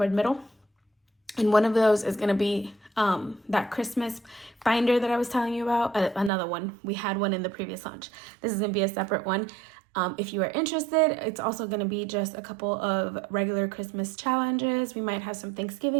middle. And one of those is going to be that Christmas binder that I was telling you about. Another one. We had one in the previous launch. This is going to be a separate one. If you are interested, it's also going to be just a couple of regular Christmas challenges. We might have some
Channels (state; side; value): drops out; left; at 6.3 s